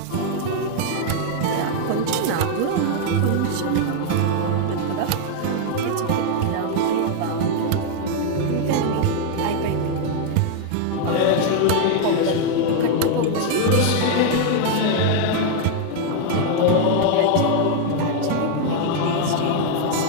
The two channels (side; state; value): both; different; correlation 0.00